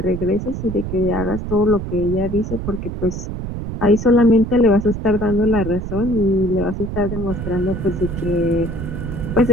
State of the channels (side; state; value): right; noise; rumble, 6 dB below the sound